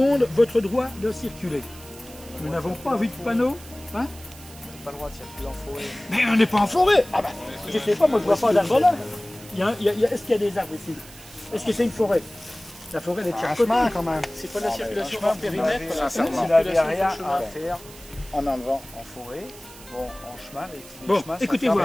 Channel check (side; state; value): right; noise; hiss, 19 dB below the sound